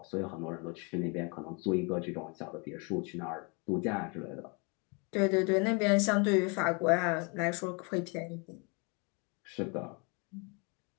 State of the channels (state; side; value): quieter; right; 32.5 dB